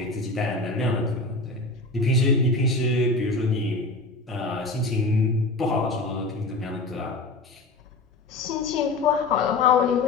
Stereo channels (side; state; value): right; quieter; 3.2 dB